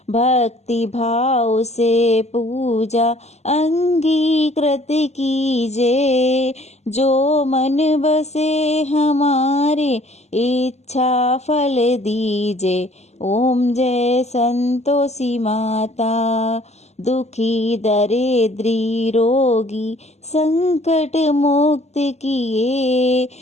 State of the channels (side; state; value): right; late; 0.32 ms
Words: भक्ति भाव से पूजा अंगीकृत कीजे, जो मन बसे हमारे इच्छा फल दीजे। ओम जय संतोषी माता। दुखी दरिद्री रोगी संकट मुक्त किए,